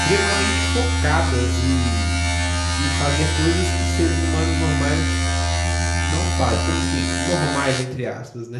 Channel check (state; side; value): identical; both; correlation 1.00